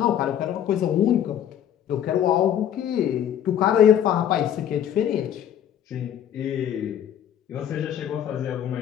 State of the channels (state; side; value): quieter; right; 10.1 dB